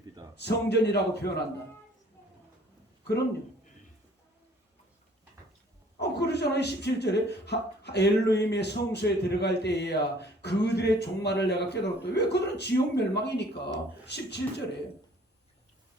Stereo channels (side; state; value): both; normal; correlation 0.55